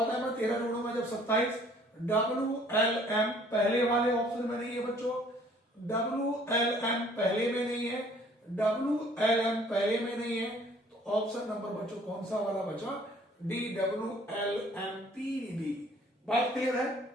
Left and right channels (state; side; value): normal; both; correlation 0.57